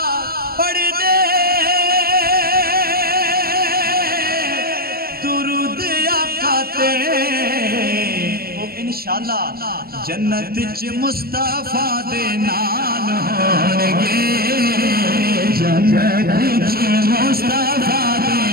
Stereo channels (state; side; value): late; left; 0.44 ms